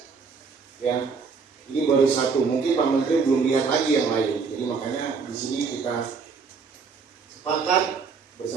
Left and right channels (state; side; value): quieter; left; 5.2 dB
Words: Ya, ini baru satu. Mungkin Pak Menteri belum lihat lagi yang lain. Jadi makanya di sini kita sepakat